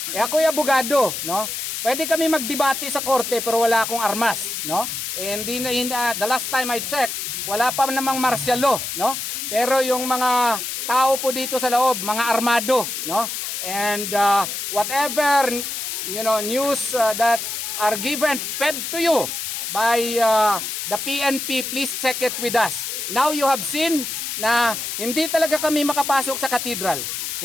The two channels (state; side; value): noise; left; hiss, 4 dB below the sound